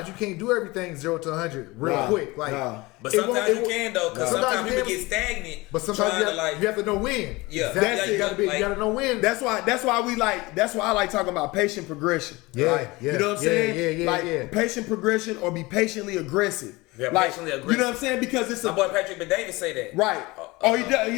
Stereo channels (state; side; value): quieter; right; 22.4 dB